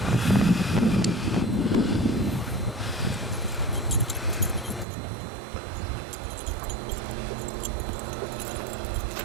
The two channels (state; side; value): drops out; left; at 4.9 s